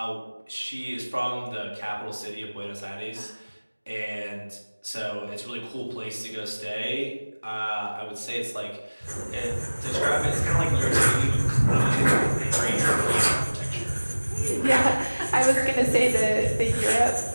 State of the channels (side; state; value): both; inverted; correlation -1.00